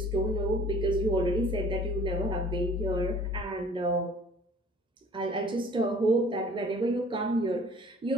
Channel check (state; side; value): normal; both; correlation 0.51